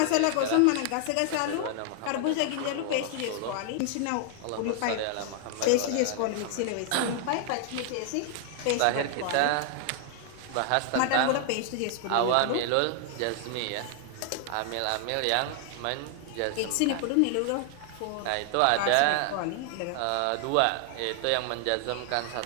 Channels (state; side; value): different; both; correlation 0.00